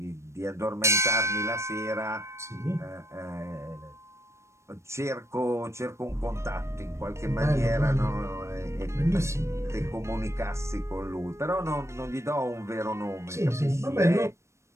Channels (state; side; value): late; left; 0.13 ms